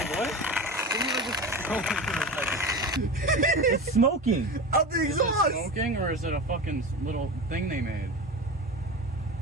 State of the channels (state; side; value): normal; both; correlation 0.27